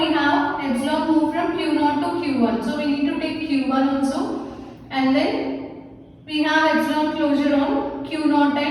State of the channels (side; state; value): both; identical; correlation 1.00